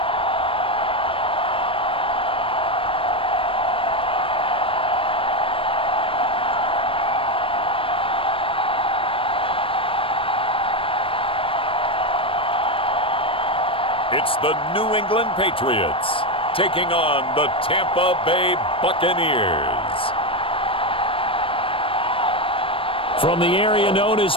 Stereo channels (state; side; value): late; right; 0.26 ms